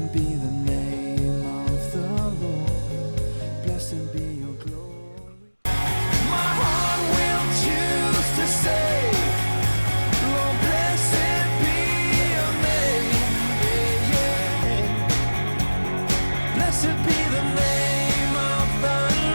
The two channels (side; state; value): both; inverted; correlation -1.00